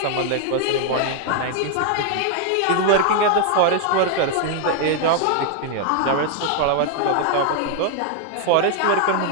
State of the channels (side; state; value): both; different; correlation 0.00